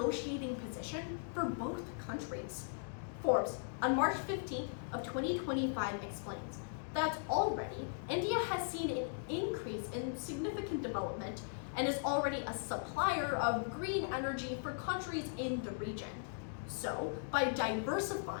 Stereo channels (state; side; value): silent; right; digital silence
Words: position for both countries. Forbes, on March 15th of 2025, explains that already India has seen an increase in significant development and is already a supplier of green energy for countries in the region. So, by